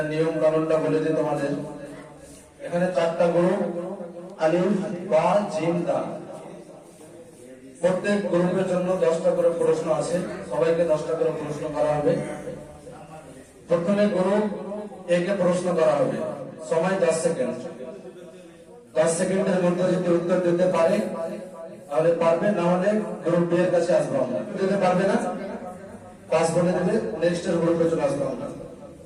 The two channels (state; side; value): identical; both; correlation 1.00